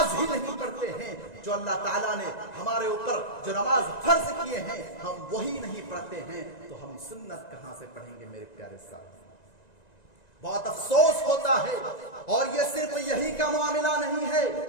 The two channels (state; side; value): late; right; 1.9 ms